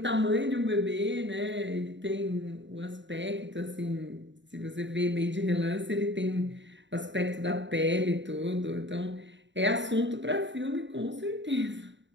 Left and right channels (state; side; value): late; left; 0.53 ms